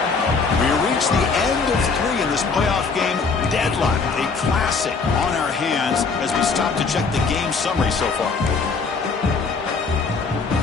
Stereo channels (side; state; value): right; quieter; 4.7 dB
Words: We reach the end of 3 in this playoff game. Deadlock, a classic on our hands as we stop to check the game summary so far.